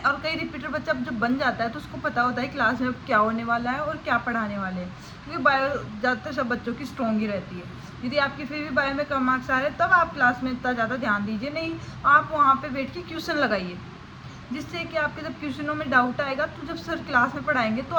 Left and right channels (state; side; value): identical; both; correlation 1.00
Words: और कई रिपीटर बच्चा जब बन जाता है तो उसको पता होता है क्लास में क्या होने वाला है और क्या पढ़ाने वाले हैं, क्योंकि बायो ज़्यादातर सब बच्चों की स्ट्रॉन्ग ही रहती है। यदि आपकी फिर भी बायो में कम मार्क्स आ रहे हैं तब आप क्लास में इतना ज़्यादा ध्यान दीजिए नहीं, आप वहाँ पर बैठ के क्वेश्चन लगाइए, जिससे कि आपके जब क्वेश्चनों में डाउट आएगा तो जब सर क्लास में पढ़ाएंगे तो